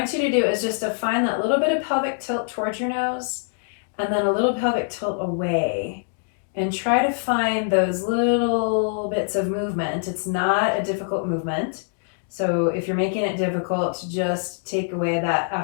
you to do is just to find that little bit of pelvic tilt towards your nose and then a little pelvic tilt away. And try to find those little bits of movement. It's not a difficult movement. So if you're making it difficult, just take away that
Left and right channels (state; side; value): silent; right; digital silence